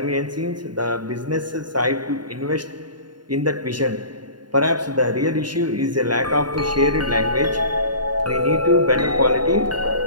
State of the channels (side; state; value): left; late; 0.70 ms